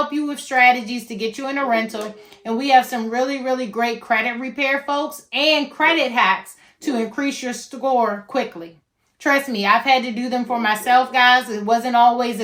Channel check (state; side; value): identical; both; correlation 1.00